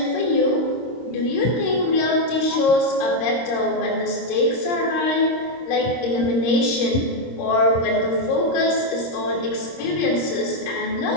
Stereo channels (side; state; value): right; late; 26 ms